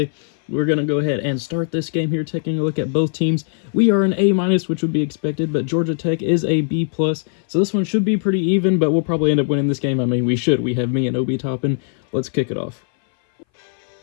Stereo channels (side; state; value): right; silent; 60 dB below the other